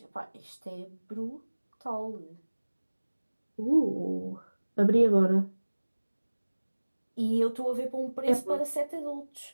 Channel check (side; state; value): both; inverted; correlation -1.00